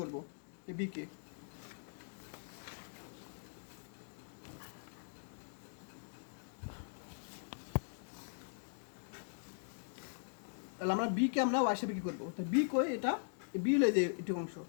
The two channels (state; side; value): silent; right; digital silence